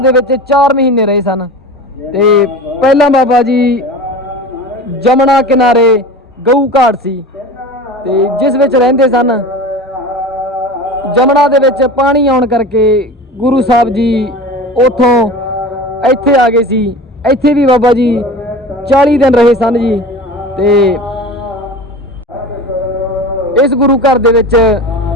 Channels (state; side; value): normal; both; correlation 0.34